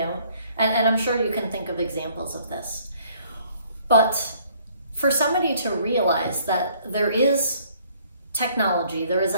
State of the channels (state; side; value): inverted; both; correlation -0.61